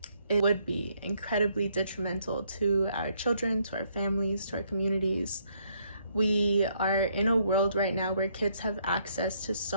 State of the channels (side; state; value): both; inverted; correlation -0.70